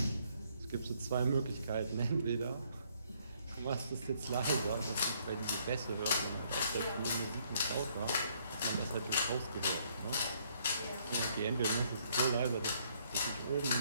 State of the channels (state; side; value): inverted; both; correlation -0.68